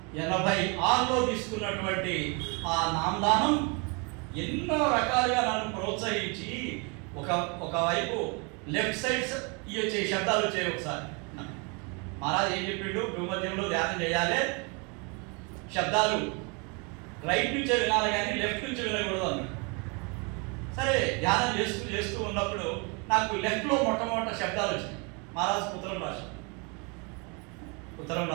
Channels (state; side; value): quieter; left; 32.3 dB